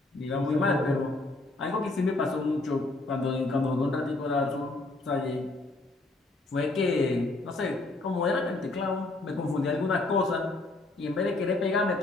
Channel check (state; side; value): quieter; right; 3.1 dB